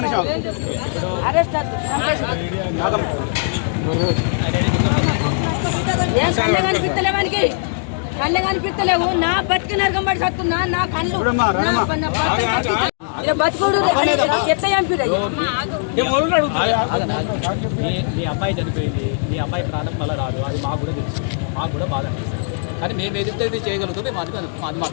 అరెస్ట్ కళ్ళ కనిపిస్తలేవు నా బతికి నరకం పడి సత్తున్నా నా కళ్ళు బతుకుడు ఎట్లా చంపిరు మీ అబ్బాయి చనిపోయింది మీ అబ్బాయి ప్రాణం మళ్ళీ రాదు అది మాకు కూడా తెలుసు మాకు కూడా బాధ అనిపిస్తుంది కానీ మేము ఏదైతే చేయగలుగుతాం మేము అది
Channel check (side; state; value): right; silent; digital silence